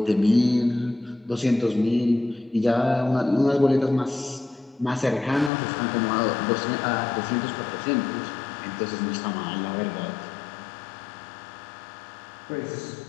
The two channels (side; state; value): right; drops out; at 5.5 s